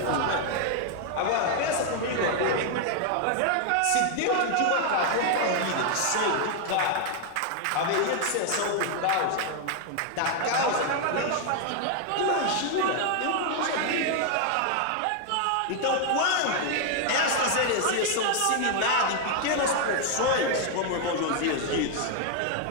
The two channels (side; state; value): both; different; correlation 0.00